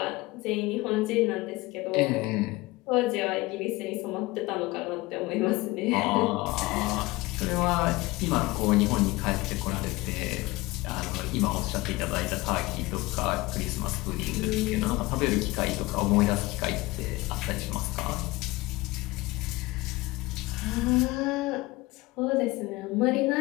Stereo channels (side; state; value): right; quieter; 21.1 dB